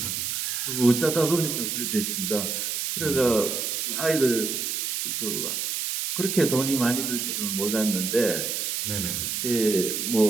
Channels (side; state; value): right; noise; hiss, 2 dB below the sound